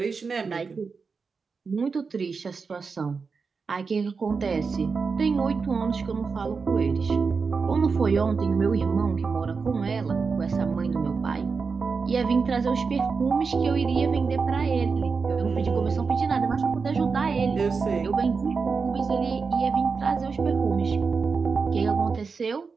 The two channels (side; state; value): left; quieter; 5.0 dB